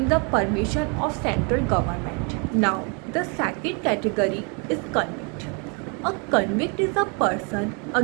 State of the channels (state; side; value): quieter; left; 34.5 dB